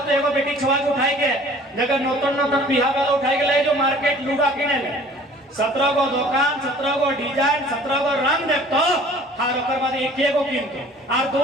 तो एगो बेटी छुआ के उठाई के जगह नौतन बिहा वाला उठाई के ले जो मार्केट लूगा किने ले 17 गो दुकान 17 गो डिजाइन 17 गो रंग देखतो हर ओकर बाद एक गो किनतो और 2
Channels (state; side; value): normal; both; correlation 0.50